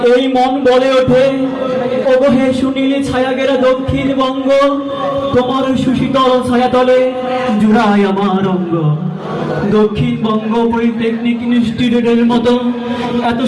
এই মন বলে ওঠে, ওগো হে সুনীল ছায়াগেরা দক্ষিণবঙ্গ, তোমার সুশীতল ছায়াতলে জুড়ায় আমার অঙ্গ। দক্ষিণবঙ্গ পলিটেকনিক ইনস্টিটিউটের মতো এত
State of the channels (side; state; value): both; identical; correlation 1.00